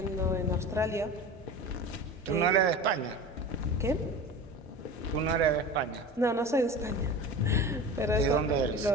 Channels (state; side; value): normal; both; correlation 0.33